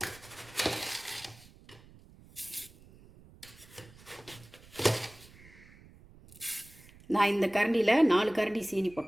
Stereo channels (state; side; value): noise; right; rumble, 23 dB below the sound